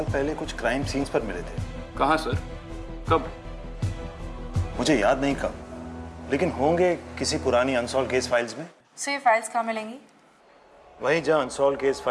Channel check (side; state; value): both; identical; correlation 1.00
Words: पहले कुछ क्राइम सीन्स पर मिले थे। कहाँ सर? कब? मुझे याद नहीं कब, लेकिन होंगे किसी पुरानी अनसॉल्व केस फाइल्स में। से ये फाइल्स कहाँ मिलेंगी? वहीं जहां अनसॉल्व केस